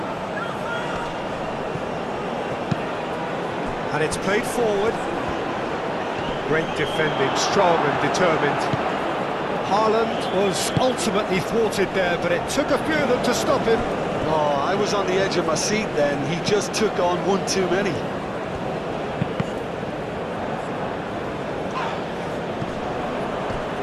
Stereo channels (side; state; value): both; identical; correlation 1.00